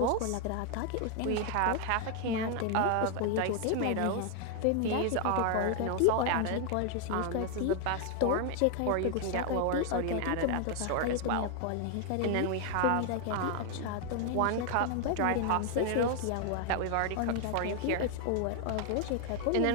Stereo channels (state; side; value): different; both; correlation 0.00